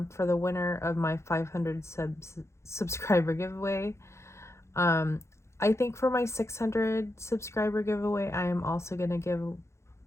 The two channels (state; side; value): late; right; 0.13 ms